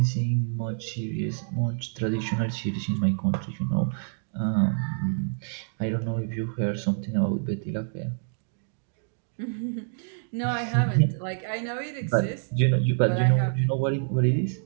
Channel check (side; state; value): left; silent; digital silence